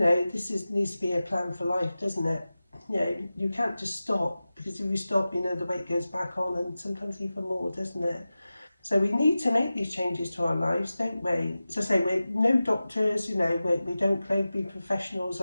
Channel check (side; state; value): both; inverted; correlation -0.95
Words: needs to be a plan for life, doesn't it? You can't just stop, because if you stop, the weight goes back on, and sometimes even more, doesn't it? So we need to make these changes to our lives, don't we? As I say, we're no doctors, we don't claim to be professionals